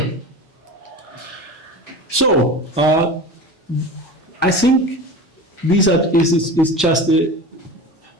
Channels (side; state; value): both; normal; correlation 0.32